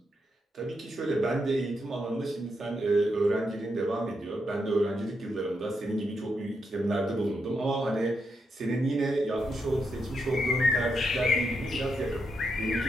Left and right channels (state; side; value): normal; both; correlation 0.82